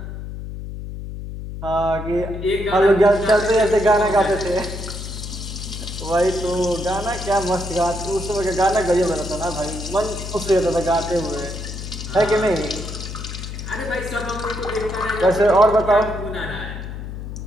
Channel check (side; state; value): left; noise; hum, 8 dB below the sound